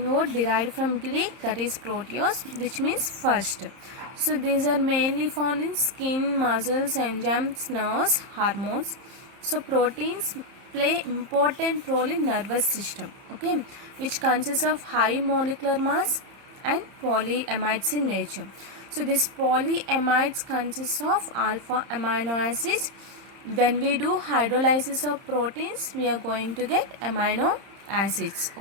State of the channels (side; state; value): left; late; 30 ms